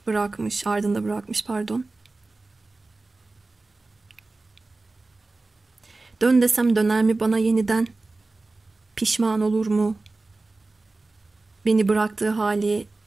bırakmış pardon. Dön desem döner mi bana yeniden? Pişman olur mu? Beni bıraktığı hali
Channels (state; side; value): quieter; left; 3.4 dB